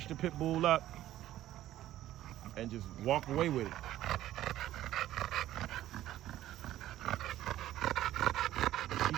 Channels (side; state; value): left; quieter; 13.6 dB